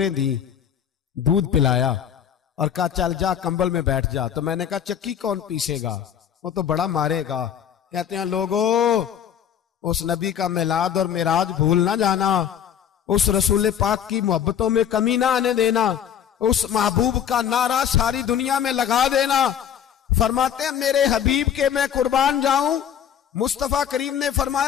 दी, दूध पिलाया और कहा चल जा कंबल में बैठ जा। तो मैंने कहा चक्की कौन पीसेगा, वो तो बड़ा मारेगा। कहते हैं लोगों, उस नबी का मिलाद और मिराज भूल ना जाना, उस रसूल पाक की मोहब्बतों में कमी ना आने देना, उस महबूब का नारा सारी दुनिया में लगा देना। फरमाते हैं मेरे हबीब के मैं कुर्बान जाऊं। मुस्तफा करीम ने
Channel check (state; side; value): quieter; right; 9.0 dB